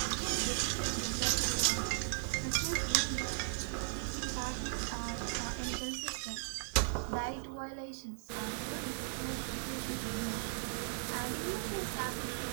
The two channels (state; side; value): silent; left; 53 dB below the other